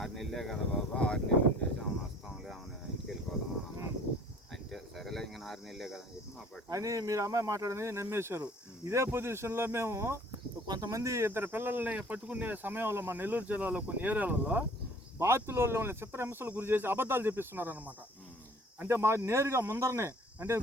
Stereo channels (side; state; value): both; normal; correlation 0.53